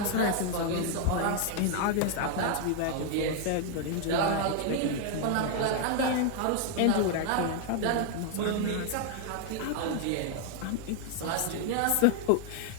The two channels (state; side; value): different; both; correlation 0.00